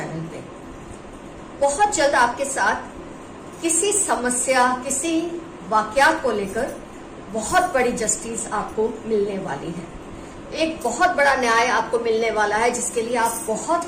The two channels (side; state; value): both; identical; correlation 1.00